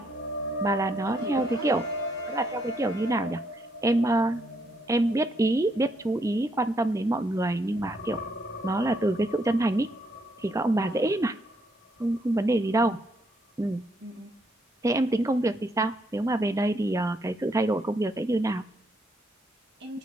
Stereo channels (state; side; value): normal; both; correlation 0.74